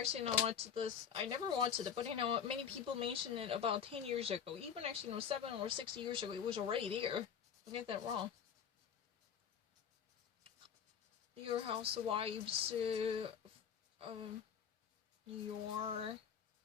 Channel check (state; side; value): quieter; right; 7.7 dB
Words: watched this, I never watched it, but many people mentioned it about 10 years ago. Even actually, 7 or 6 years ago, it was already there. Don't get that wrong. Real Housewives, New York,